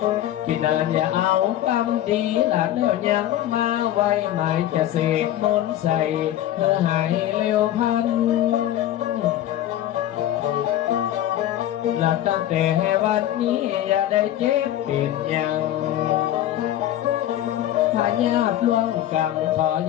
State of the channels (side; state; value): right; quieter; 12.6 dB